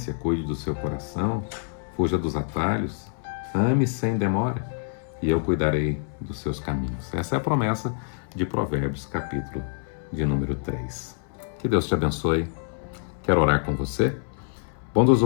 cuide do seu coração, fuja dos atalhos, ame sem demora, e eu cuidarei dos seus caminhos. Essa é a promessa de Provérbios, capítulo de número 3. Que Deus te abençoe. Quero orar com você.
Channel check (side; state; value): right; silent; 61 dB below the other